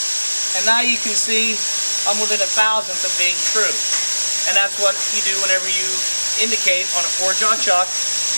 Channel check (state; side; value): inverted; both; correlation -1.00